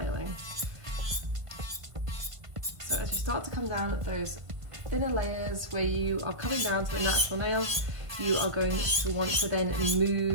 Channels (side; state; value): left; late; 1.5 ms